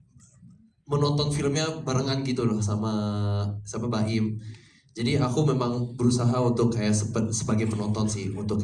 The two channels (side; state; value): both; identical; correlation 1.00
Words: menonton filmnya barengan gitu loh sama Baim. Jadi aku memang berusaha untuk kayak sebagai penonton sih, untuk